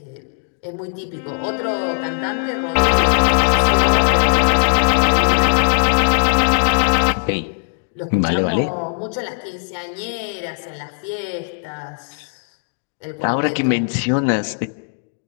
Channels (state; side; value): silent; right; digital silence